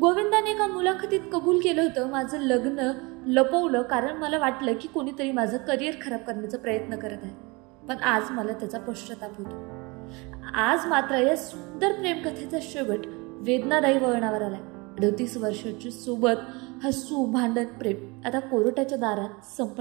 गोविंदाने एका मुलाखतीत कबूल केलं होतं, माझं लग्न लपवलं कारण मला वाटलं की कोणीतरी माझं करिअर खराब करण्याचा प्रयत्न करत आहे, पण आज मला त्याचा पश्चाताप होतो. आज मात्र या सुंदर प्रेमकथेचा शेवट वेदनादायी वळणावर आलाय. 38 वर्षाची सोबत हसू, भांडण, प्रेम आता कोर्टाच्या दारात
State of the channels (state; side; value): quieter; left; 26.5 dB